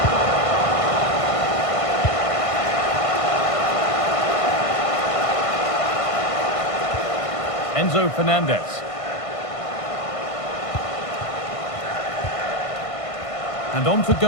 Enzo Fernandez. And on to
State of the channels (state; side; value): late; right; 1.5 ms